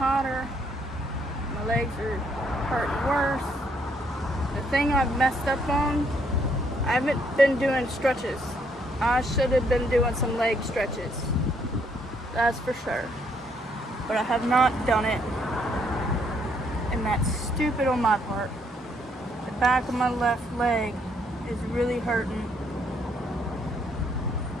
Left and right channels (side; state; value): both; normal; correlation 0.70